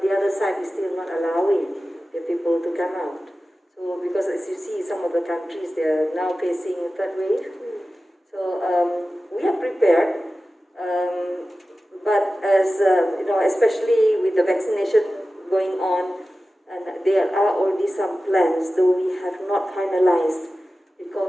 other side is still not allowing the people to come out. So because as you see, some of the countries they are now facing a third wave. So we are prepared, but as especially with the vaccination going on. And there are already some plans, though we have not finalized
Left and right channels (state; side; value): normal; both; correlation 0.95